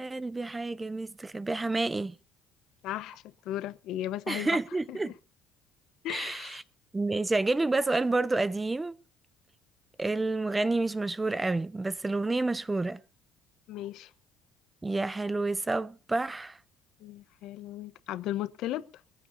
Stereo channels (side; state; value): both; normal; correlation 0.91